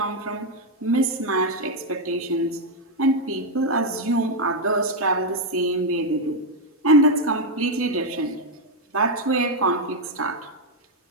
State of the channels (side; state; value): both; normal; correlation 0.02